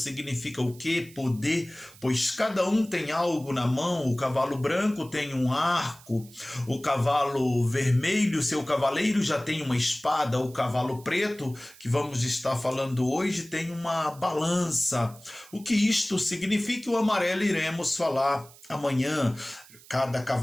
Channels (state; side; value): noise; right; hiss, 22 dB below the sound